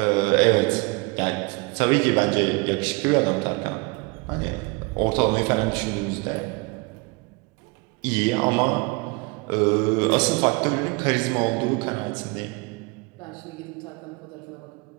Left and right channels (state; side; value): quieter; left; 28.0 dB